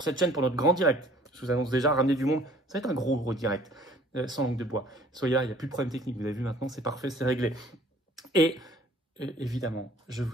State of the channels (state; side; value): normal; both; correlation 0.54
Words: cette chaîne pour notre grand direct. Je vous annonce déjà, ramener du monde. Ça va être un gros direct, sans langue de bois. Soyez là, il n'y a plus de problème technique. Vous avez vu maintenant, c'est parfait, c'est réglé. Et évidemment, je